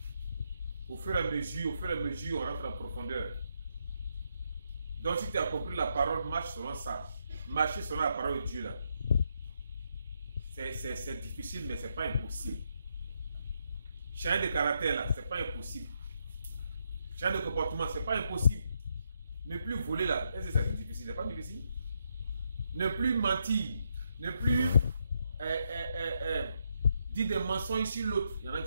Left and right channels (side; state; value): both; inverted; correlation -0.79